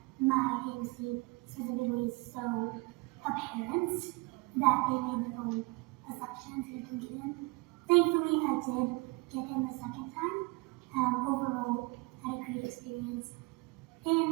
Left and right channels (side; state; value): left; quieter; 25.1 dB